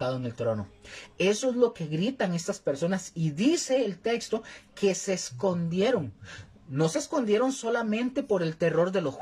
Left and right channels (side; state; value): both; identical; correlation 1.00